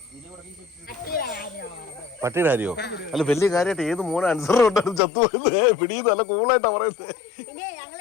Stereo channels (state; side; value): drops out; right; at 5.0 s